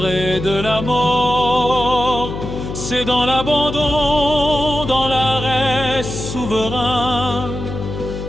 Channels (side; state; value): left; noise; hum, 7 dB below the sound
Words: et de la mort. C'est dans l'abandon, dans l'arrêt souverain,